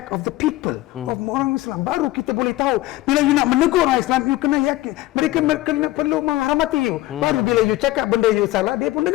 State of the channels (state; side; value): quieter; right; 17.2 dB